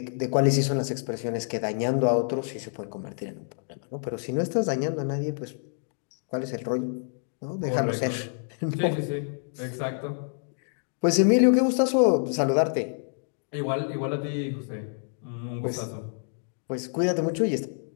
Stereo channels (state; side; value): silent; right; digital silence